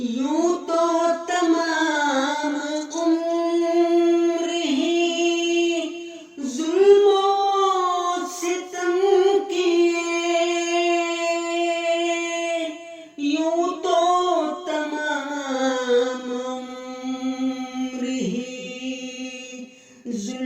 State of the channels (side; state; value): both; identical; correlation 1.00